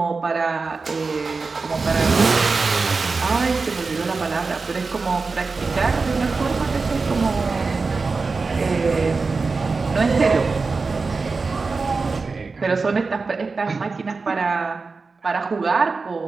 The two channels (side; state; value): left; quieter; 4.2 dB